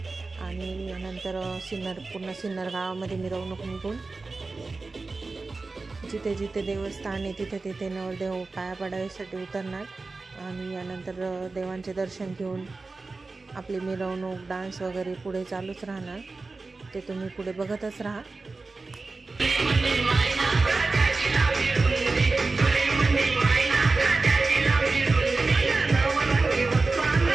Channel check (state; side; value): quieter; left; 3.7 dB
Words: आणि यानंतर पूर्ण सिन्नर गावामध्ये मिरवणूक निघून जिथे जिथे देवस्थान आहे तिथे नवरदेव पाया पडायसाठी उतरणार आणि यानंतर देवांचे दर्शन घेऊन आपली मिरवणूक, डान्स वगैरे पुढे चालूच राहणार। ते तुम्ही पुढे बघतच राहा।